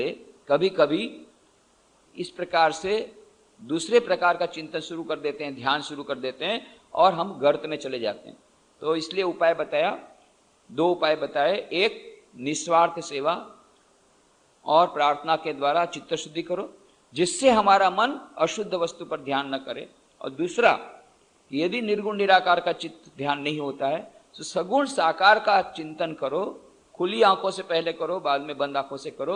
कभी कभी इस प्रकार से दूसरे प्रकार का चिंतन शुरू कर देते हैं, ध्यान शुरू कर देते हैं और हम गर्त में चले जाते हैं। तो इसलिए उपाय बताया, दो उपाय बताए, एक निस्वार्थ सेवा और प्रार्थना के द्वारा चित्त शुद्धि करो जिससे हमारा मन अशुद्ध वस्तु पर ध्यान न करे, और दूसरा यदि निर्गुण निराकार का चित्त ध्यान नहीं होता है, तो सगुण साकार का चिंतन करो, खुली आंखों से पहले करो, बाद में बंद आंखों से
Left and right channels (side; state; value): both; identical; correlation 1.00